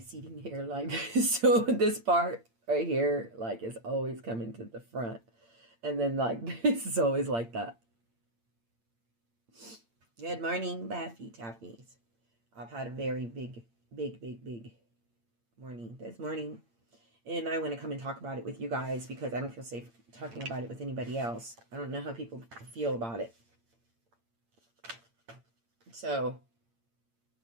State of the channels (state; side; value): late; left; 8.7 ms